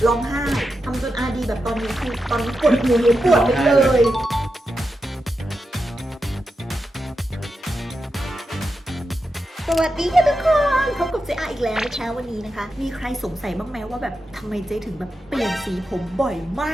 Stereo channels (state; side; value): normal; both; correlation 0.88